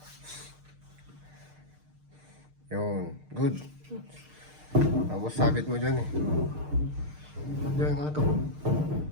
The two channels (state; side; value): late; left; 6.6 ms